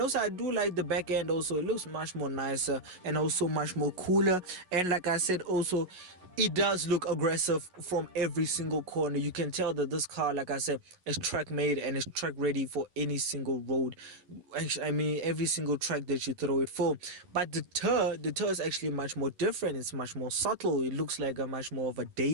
also I do like the back end. Also, it looks much more nicer and also much more cooler. And like I said, also it does look aggressive from every single corner. You can tell that this car, like I said, is track made and is track ready for any single road. Actually, I mean, every single track that you throw it for. But the Tur is actually much more different. It's much more subtle. It looks like a much more of a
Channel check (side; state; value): left; late; 11 ms